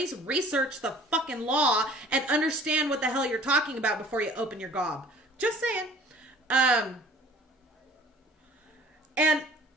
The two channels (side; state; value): both; normal; correlation 0.50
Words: research the fucking law and understand what the hell you're talking about before you open your gob. Just saying. And